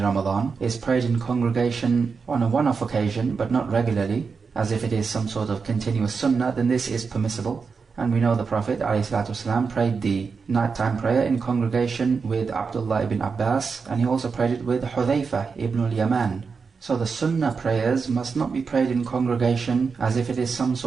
Ramadan is prayed in congregation on a one-off occasion, but not regularly, as if it is some sort of continuous sunnah, then this is permissible. And we know the Prophet ﷺ prayed the nighttime prayer in congregation with Abdullah ibn Abbas, and he also prayed it with Hudhayfah ibn al-Yaman. So the sunnah prayers must not be prayed in congregation as if it is some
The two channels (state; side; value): quieter; left; 5.2 dB